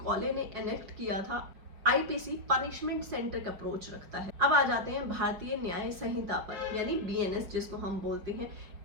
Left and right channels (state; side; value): late; left; 5.4 ms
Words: ने एनेक्ट किया था। आईपीसी पनिशमेंट सेंट्रिक अप्रोच रखता है। अब आ जाते हैं भारतीय न्याय संहिता पर, यानी बीएनएस जिसको हम बोलते हैं।